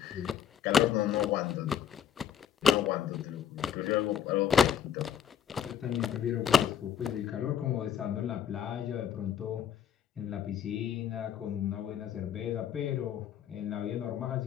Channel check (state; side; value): quieter; right; 8.7 dB